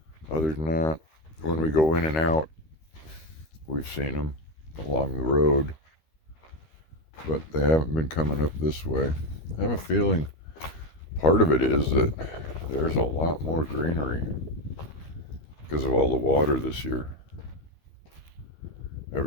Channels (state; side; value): late; right; 13 ms